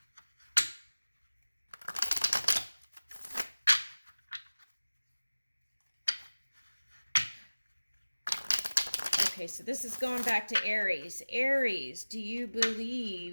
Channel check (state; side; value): inverted; both; correlation -1.00